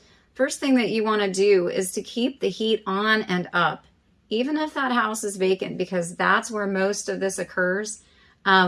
First thing that you want to do is to keep the heat on and up, even if that house is vacant, because that's where most of this occurs.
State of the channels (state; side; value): identical; both; correlation 1.00